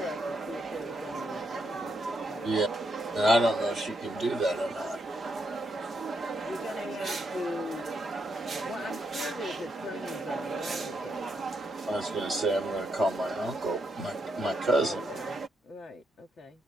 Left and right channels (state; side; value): normal; both; correlation 0.79